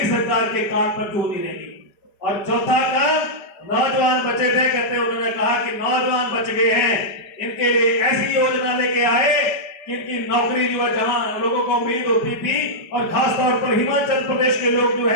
सरकार के काम पर क्यों नहीं रहेगी। और चौथा काम, नौजवान बचे थे, कहते उन्होंने कहा कि नौजवान बच गए हैं, इनके लिए ऐसी योजना लेके आए कि इनकी नौकरी जो है जहां लोगों को उम्मीद होती थी, और खासतौर पर हिमाचल प्रदेश के लोग जो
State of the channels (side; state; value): right; late; 5.1 ms